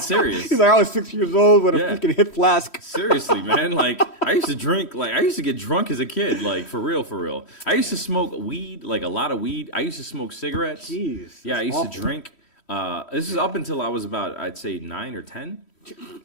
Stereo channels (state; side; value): late; right; 3.1 ms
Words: serious. He's like, I was 6 years old with a freaking hip flask. Seriously, man. Like, I used to drink, like, I used to get drunk as a kid, like, for real, for real. I used to smoke weed, like, a lot of weed. I used to smoke cigarettes. Jeez. Yeah, I used awful. to drink. This is up until I was about, I'd say, 9 or 10.